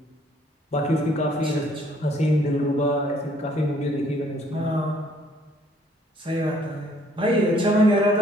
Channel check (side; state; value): both; normal; correlation 0.62